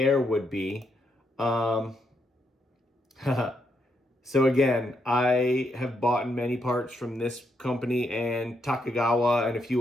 would be. So again, I have bought many parts from this company and Takigawa and a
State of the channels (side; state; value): both; normal; correlation 0.78